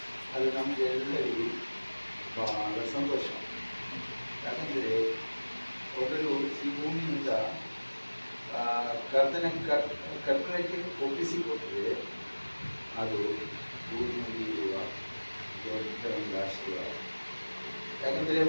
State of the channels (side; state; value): both; inverted; correlation -1.00